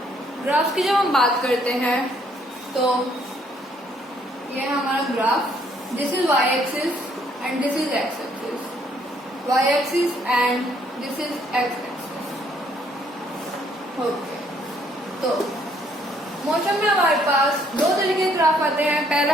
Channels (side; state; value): both; normal; correlation 0.67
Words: ग्राफ्स की जब हम बात करते हैं तो ये हमारा graph, this is Y axis and this is X axis, Y axis and this is X axis. Okay, तो मोशन में हमारे पास दो तरीके के ग्राफ आते हैं। पहला